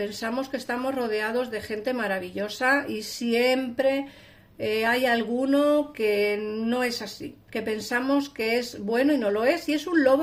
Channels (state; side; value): identical; both; correlation 1.00